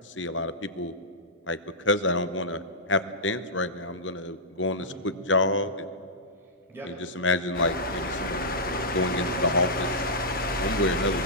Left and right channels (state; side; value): normal; both; correlation -0.13